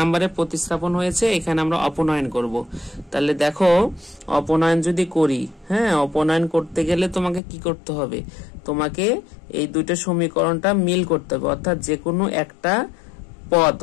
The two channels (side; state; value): right; drops out; at 7.4 s